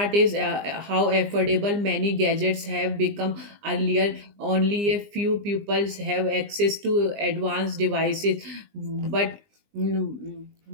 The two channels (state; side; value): late; left; 20 ms